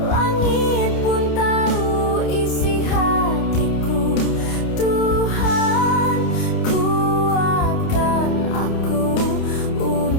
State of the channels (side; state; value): right; late; 29 ms